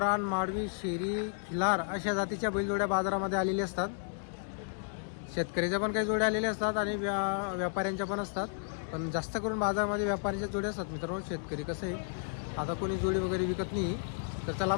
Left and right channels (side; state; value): right; silent; digital silence